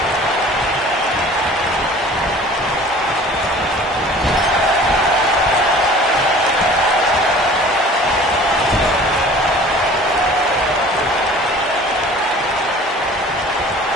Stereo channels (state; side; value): normal; both; correlation 0.46